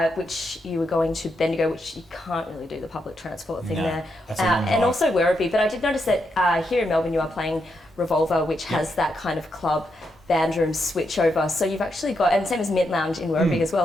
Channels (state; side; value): normal; both; correlation 0.82